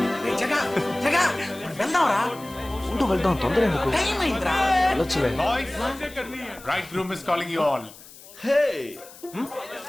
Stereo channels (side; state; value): left; noise; hiss, 19 dB below the sound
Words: రేయ్ జగా జగా మనం వెళ్దాం రా. ఉంటూ వెళ్దాం, తొందర ఎందుకు? టైం అయిందిరా. వెళ్ళొచ్చులే. Boys, bridegroom is calling you all. Hey!